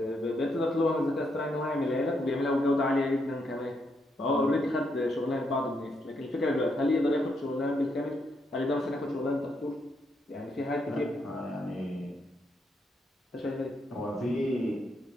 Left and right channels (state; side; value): normal; both; correlation 0.78